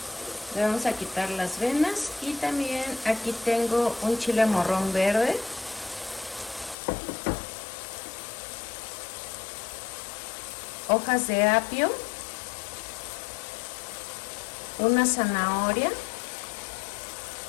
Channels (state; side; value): drops out; right; at 6.8 s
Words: Le vamos a quitar las venas y también aquí tengo un chile morrón verde. Hojas de apio. Una zanahoria.